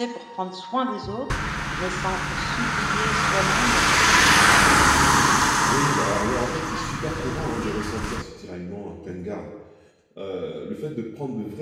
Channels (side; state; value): both; identical; correlation 1.00